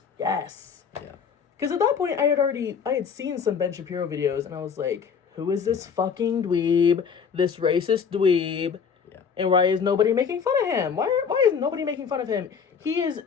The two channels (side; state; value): right; quieter; 6.5 dB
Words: Yes. Yeah. Because at that point, I had seen some Ben Shapiro videos, and I was like, who is this fucking dweeb? This racist dweeb? Yeah. And why is nobody making fun of him? Why is nobody making fun of him? He is